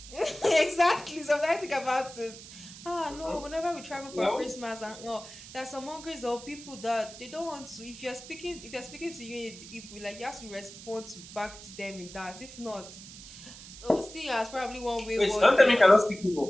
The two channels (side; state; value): right; noise; hiss, 15 dB below the sound